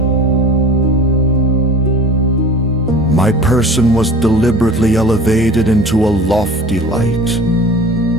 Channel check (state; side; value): normal; both; correlation 0.42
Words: My person was deliberately elevated into a lofty light.